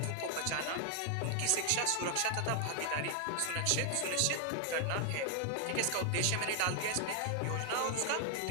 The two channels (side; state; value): both; different; correlation 0.00